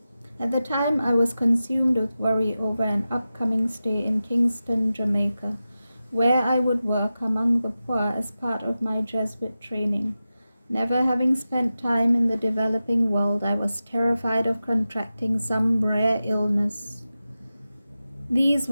At the time, I was consumed with worry over an upcoming stay in Kingston, Jamaica, where I would work among the poor as part of my Jesuit training. Never having spent time in the developing world, I was terrified of contracting some rare illness. These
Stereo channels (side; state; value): both; inverted; correlation -0.93